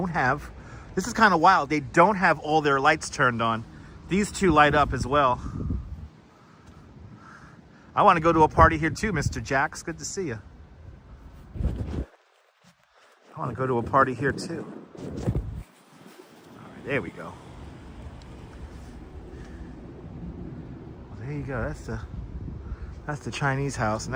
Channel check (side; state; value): both; identical; correlation 1.00